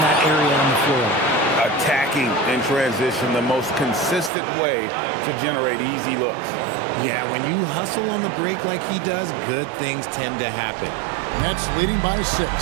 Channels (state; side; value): drops out; left; at 4.3 s